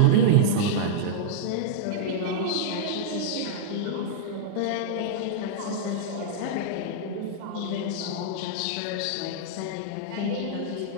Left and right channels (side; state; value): both; different; correlation -0.02